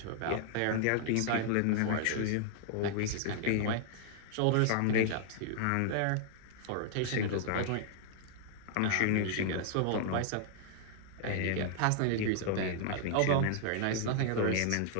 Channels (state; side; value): different; both; correlation -0.01